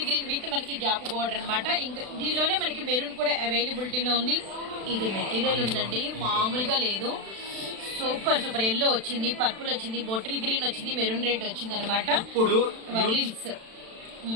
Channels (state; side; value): late; left; 36 ms